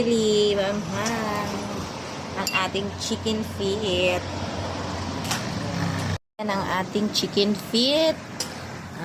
manghang. Ang ating chicken feet. Ayan ang ating chicken feet.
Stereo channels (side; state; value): both; identical; correlation 1.00